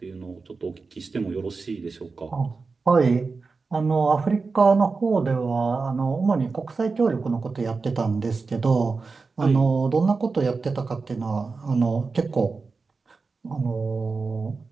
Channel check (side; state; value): left; quieter; 4.3 dB